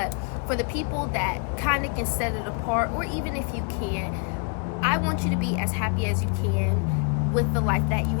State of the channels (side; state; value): right; quieter; 39.7 dB